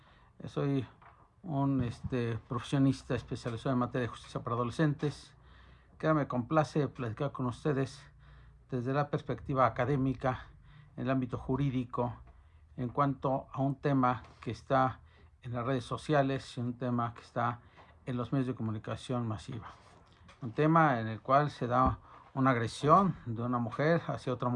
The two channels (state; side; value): identical; both; correlation 1.00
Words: Soy un profesionista especializado en materia de justicia para adolescentes, que me complace platicar con ustedes desde la perspectiva académica, en el ámbito jurídico, en cuanto a un tema que está en las redes sociales y un tema que está en los medios de comunicación masiva. Un tema en el cual se da una agresión de una mujer hacia otra